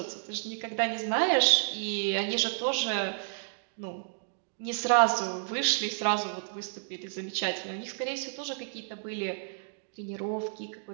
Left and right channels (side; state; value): left; silent; digital silence